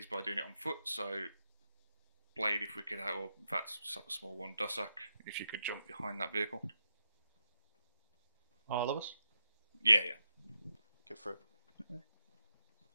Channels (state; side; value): inverted; both; correlation -0.86